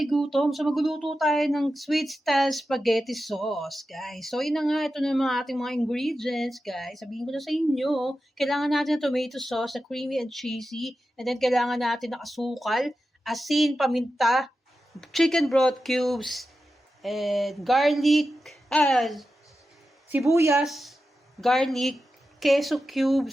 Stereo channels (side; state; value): both; normal; correlation 0.91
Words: gutom, so magluluto tayo ng sweet style spaghetti sauce, guys. So yun na nga, ito na yung mga ating mga ingredients, guys. Sabihin ko na sa inyo, kailangan natin ng tomato sauce na creamy and cheesy. And then kailangan natin ng asukal, asin, paminta, chicken broth cubes, and garlic, sibuyas, garlic, queso